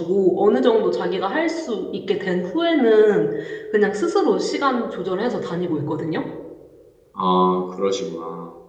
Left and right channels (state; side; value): identical; both; correlation 1.00